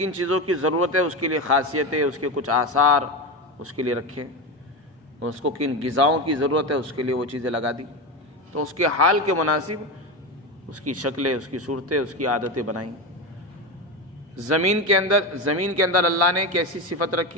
چیزوں کی ضرورت ہے، اس کے لیے خاصیتیں، اس کے کچھ آثار اس کے لیے رکھے، اس کو کن غذاؤں کی ضرورت ہے اس کے لیے وہ چیزیں لگا دی، تو اس کے حال کے مناسب اس کی شکلیں، اس کی صورتیں، اس کی عادتیں بنائیں۔ زمین کے اندر اللہ نے کیسی صفت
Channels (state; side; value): normal; both; correlation 0.18